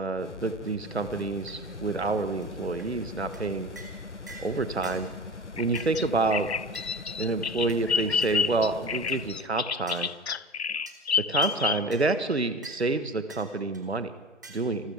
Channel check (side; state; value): both; normal; correlation 0.33